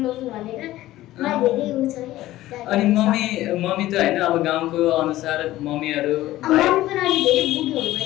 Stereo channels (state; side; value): quieter; right; 15.6 dB